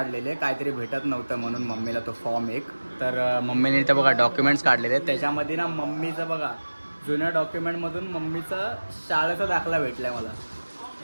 काहीतरी भेटत नव्हतं म्हणून मम्मीला तो फॉर्म एक. तर मम्मीने इथं बघा डॉक्युमेंट्स काढलेले. त्याच्यामध्ये ना मम्मीचं बघा जुन्या डॉक्युमेंटमधून मम्मीचा शाळेचा दाखला भेटलाय मला.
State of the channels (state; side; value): inverted; both; correlation -1.00